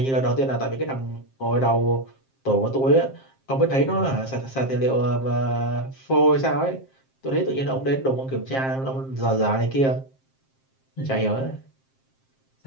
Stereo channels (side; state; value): right; late; 7.6 ms